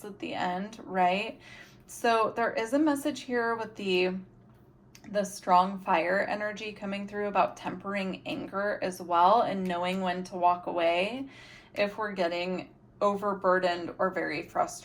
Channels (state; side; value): identical; both; correlation 1.00